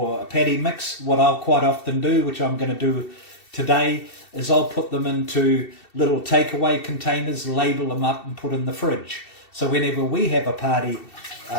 a patty mix. What I'll quite often do, which I'm going to do today, is I'll put them into little takeaway containers, label them up and put in the fridge. So whenever we have a party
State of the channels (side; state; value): right; late; 2.7 ms